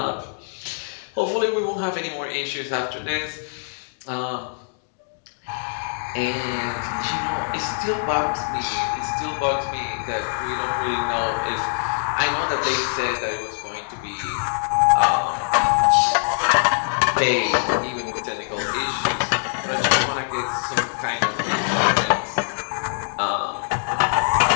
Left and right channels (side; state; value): right; silent; digital silence